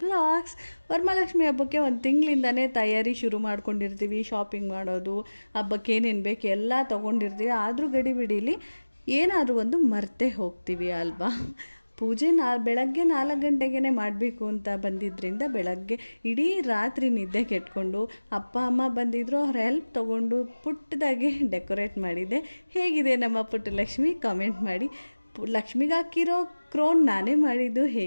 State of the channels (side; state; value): both; inverted; correlation -1.00